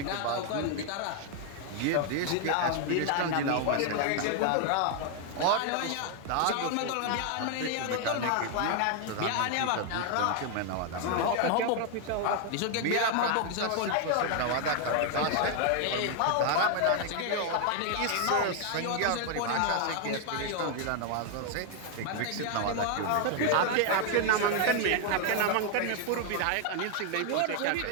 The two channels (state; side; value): different; both; correlation 0.00